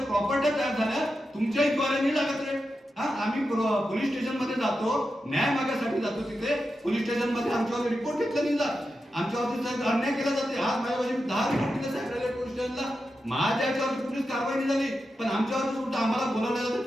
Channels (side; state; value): both; normal; correlation 0.89